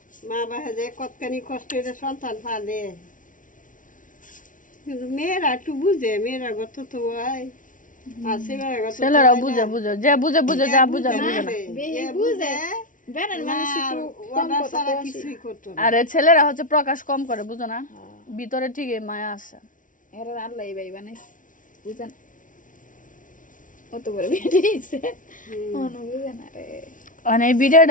মা বাবা যে কতখানি কষ্ট করে সন্তান পালে কিন্তু মেয়েরা একটু বুঝে মেয়েরা গত তো হয় আর ছেলেরা গত তো ছেলেরা হয় না। বুঝে বুঝে যে বুঝে বুঝে যা বুঝে বুঝে না বেশি বুঝে বেরেন মানুষ একটু কম ওরা কথা ছাড়া কয় কিছুই করতো না। আরে ছেলেরা হচ্ছে প্রকাশ কম করে বুঝো না ভিতরে ঠিকই মায়া আছে এরা আল্লাহ এই ভাই বানাইছে বুঝেন অত বড় বেরিয়েছে মনে বুঝে না রে মানে এই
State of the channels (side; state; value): right; late; 0.38 ms